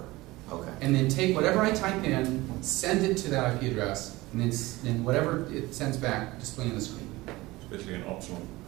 Okay. And then take whatever I type in, send it to that IP address, and then whatever it sends back, display on the screen. Especially an optional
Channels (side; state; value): left; quieter; 20.0 dB